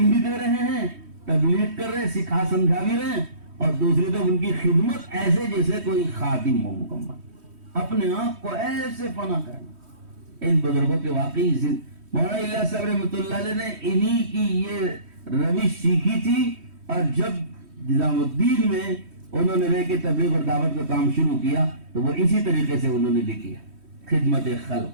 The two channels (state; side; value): late; left; 3.1 ms